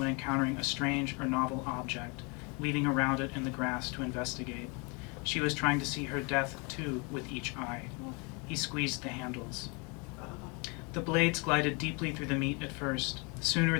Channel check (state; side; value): quieter; right; 31.4 dB